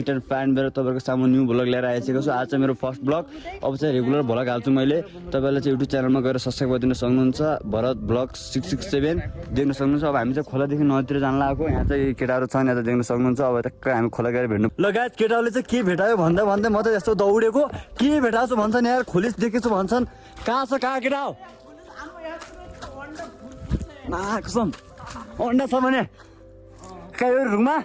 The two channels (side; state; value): both; identical; correlation 1.00